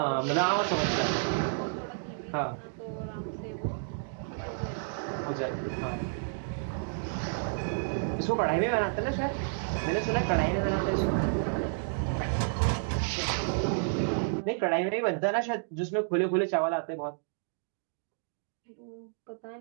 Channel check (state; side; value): silent; left; digital silence